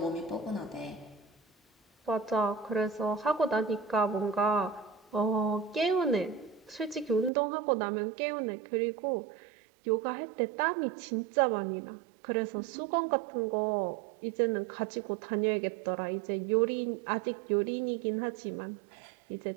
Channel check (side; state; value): left; drops out; at 7.3 s